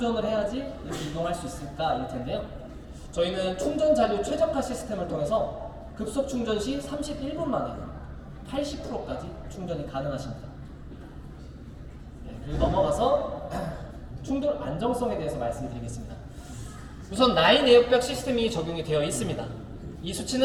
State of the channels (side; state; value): both; identical; correlation 1.00